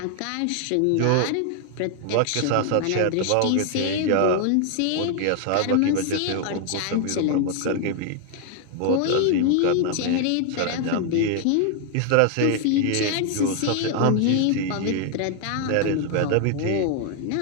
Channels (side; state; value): both; different; correlation 0.00